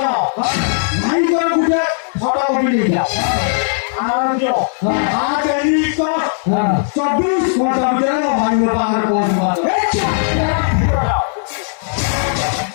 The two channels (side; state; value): right; silent; digital silence